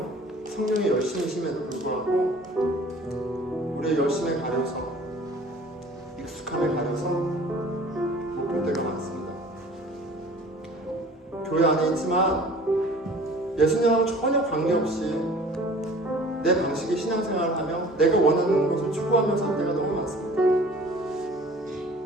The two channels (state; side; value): normal; both; correlation 0.48